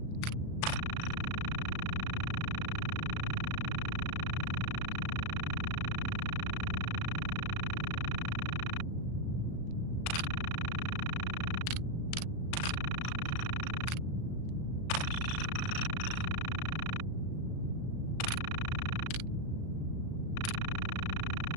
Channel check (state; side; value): late; right; 37 ms